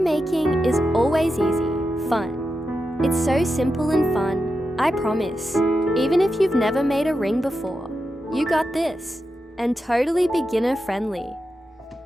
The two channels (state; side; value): normal; both; correlation 0.89